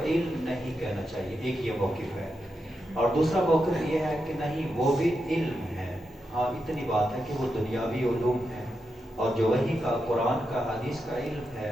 نہیں کہنا چاہیے. ایک یہ موقف ہے. اور دوسرا موقف یہ ہے کہ نہیں، وہ بھی علم ہے، ہاں اتنی بات ہے کہ وہ دنیاوی علوم ہے، اور جو وحی کا، قرآن کا، حدیث کا علم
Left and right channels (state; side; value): normal; both; correlation 0.87